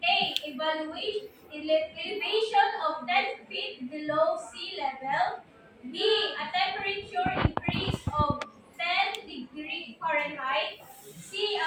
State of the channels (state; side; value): identical; both; correlation 1.00